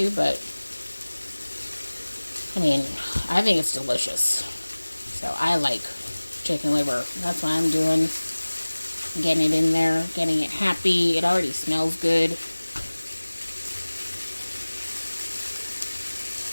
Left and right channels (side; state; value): both; inverted; correlation -1.00